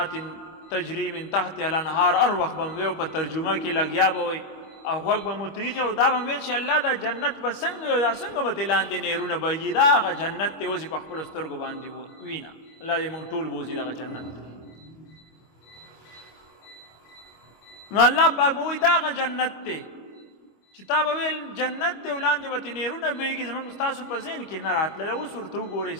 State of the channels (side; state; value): right; late; 25 ms